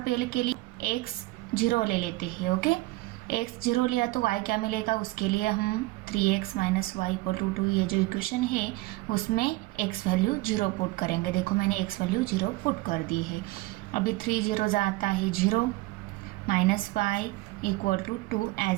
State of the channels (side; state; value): left; quieter; 20.4 dB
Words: पेयर के लिए x 0 ले लेते हैं। ओके, x 0 लिया तो y क्या मिलेगा, उसके लिए हम 3x - y = 2 ये जो इक्वेशन है उसमें x वैल्यू 0 पुट करेंगे। देखो मैंने x वैल्यू 0 पुट कर दी है। अभी 3 0 आता है 0, -y = 2